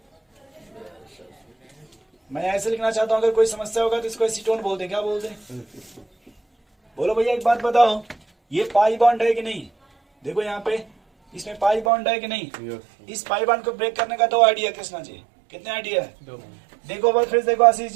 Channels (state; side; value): drops out; left; at 11.9 s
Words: मैं ऐसे लिखना चाहता हूँ, अगर कोई समस्या होगा तो इसको एसीटोन बोलते, क्या बोलते? बोलो भैया एक बात बताओ, ये पाई बॉन्ड है कि नहीं? देखो यहाँ पे इसमें पाई बॉन्ड है कि नहीं? Yes, इस पाई बॉन्ड को ब्रेक करने का 2 आइडिया कृष्णा जी, कितने आइडिया है? 2 देखो बस फिर देखो आशीष